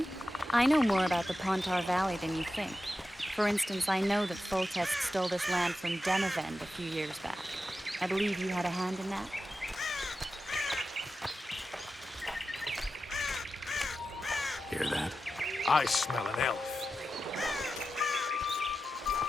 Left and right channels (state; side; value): normal; both; correlation 0.91